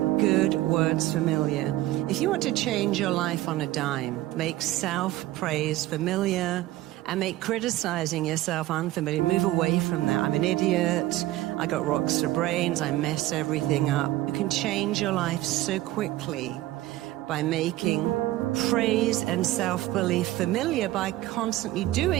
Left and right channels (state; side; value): quieter; left; 16.1 dB